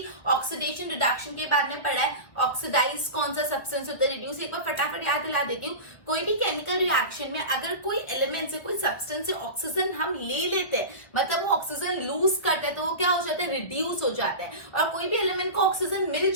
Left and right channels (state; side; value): late; right; 1.8 ms